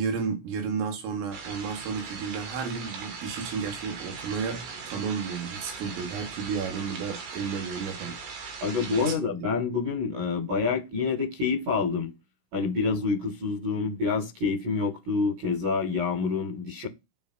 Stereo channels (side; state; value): left; late; 16 ms